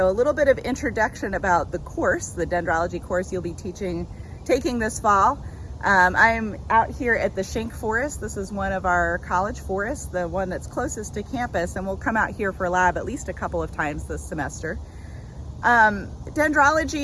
a little bit of introduction about the course, the dendrology course you'll be taking this fall. I'm out here at the Schenck Forest. This is one of our college forests, the one that's closest to campus, and we'll come out here for lab at least a couple of times this semester.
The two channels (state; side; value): identical; both; correlation 1.00